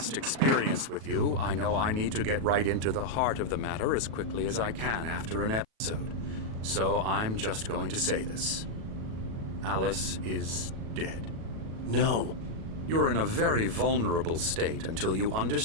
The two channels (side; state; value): left; late; 37 ms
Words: experience with you, I know I need to get right into the heart of the matter as quickly as I can after an episode. So I'm just going to say this. Alice is dead. No. You're in a very vulnerable state until you